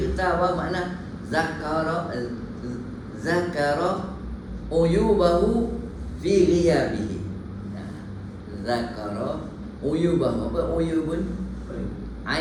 makna zakara uyubahu fi ghiyabihi. Zakara uyubahu. Apa uyubun?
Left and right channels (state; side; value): identical; both; correlation 1.00